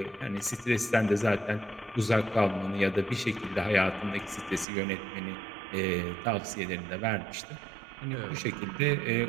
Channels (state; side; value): drops out; left; at 4.7 s